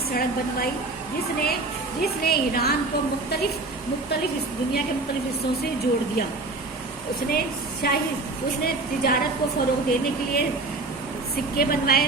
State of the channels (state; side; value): quieter; left; 3.3 dB